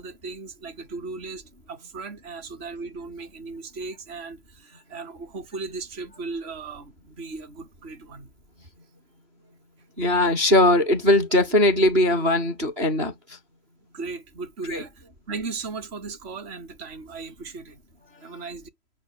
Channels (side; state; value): left; late; 3.0 ms